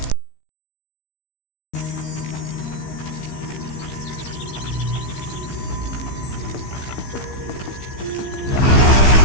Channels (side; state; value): right; late; 15 ms